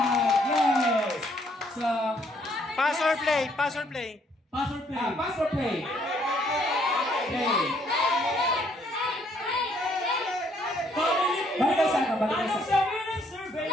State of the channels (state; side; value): normal; both; correlation 0.67